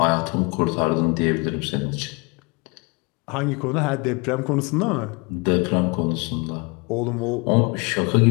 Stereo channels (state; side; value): quieter; right; 29.9 dB